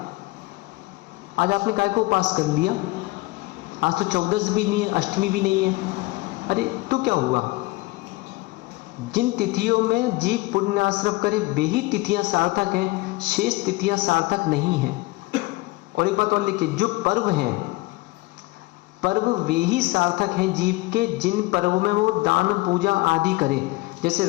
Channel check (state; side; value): quieter; right; 21.5 dB